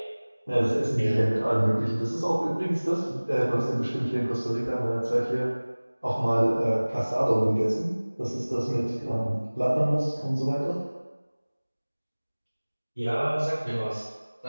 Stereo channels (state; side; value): inverted; both; correlation -1.00